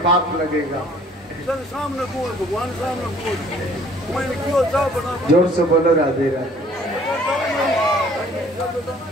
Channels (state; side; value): normal; both; correlation 0.56